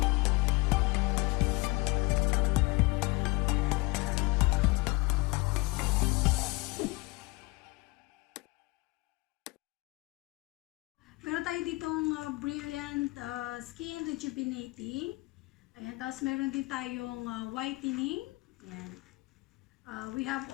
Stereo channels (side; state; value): right; quieter; 24.5 dB